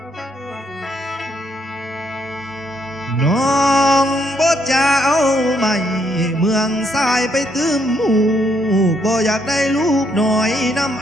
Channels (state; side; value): normal; both; correlation 0.73